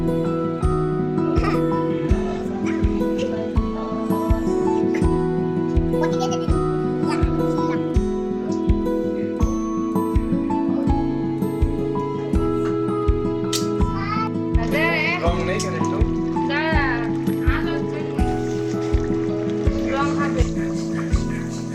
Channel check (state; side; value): identical; both; correlation 1.00